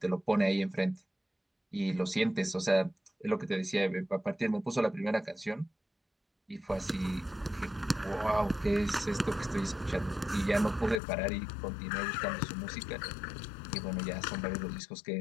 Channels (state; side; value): drops out; right; at 11.0 s